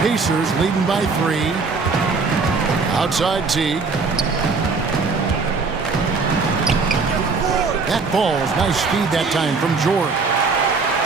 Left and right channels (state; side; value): quieter; left; 4.4 dB